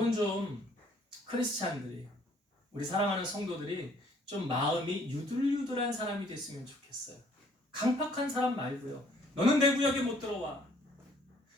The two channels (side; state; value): both; normal; correlation 0.61